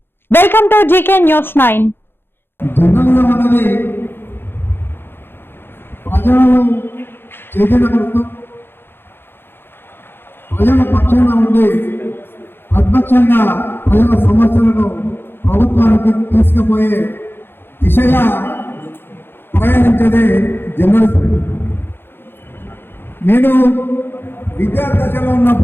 welcome to GK news 9. Journalism అనేది ప్రజలను చైతన్యపరుస్తూ ప్రజల పక్షాన ఉండి ప్రతిపక్షంగా ప్రజల సమస్యలను ప్రభుత్వానికి తీసుకుపోయే దిశగా ప్రయాణించేదే జర్నలిజం. నేను విద్యార్థి దశలో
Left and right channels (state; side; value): late; right; 0.10 ms